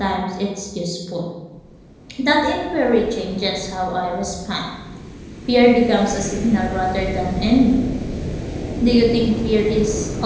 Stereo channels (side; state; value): both; identical; correlation 1.00